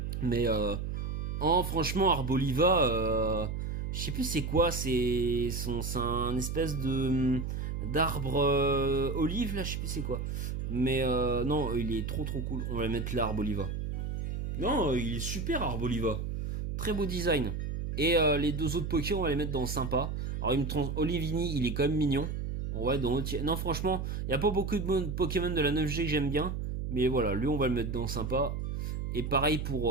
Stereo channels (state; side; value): noise; right; hum, 3 dB below the sound